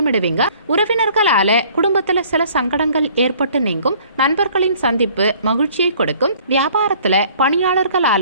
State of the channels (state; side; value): inverted; both; correlation -0.55